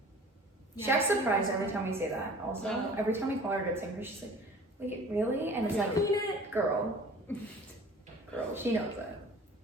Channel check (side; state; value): both; normal; correlation 0.45